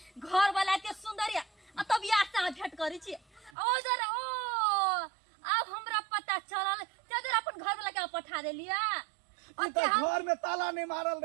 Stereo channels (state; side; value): drops out; left; at 3.5 s